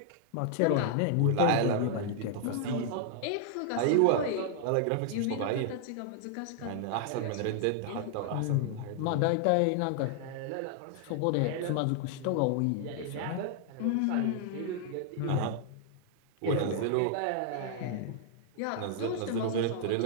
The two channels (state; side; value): different; both; correlation -0.01